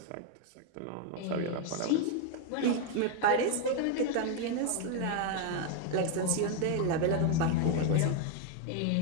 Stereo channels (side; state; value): both; different; correlation 0.01